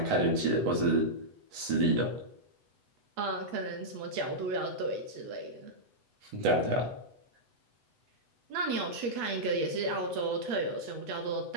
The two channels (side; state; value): left; late; 8.0 ms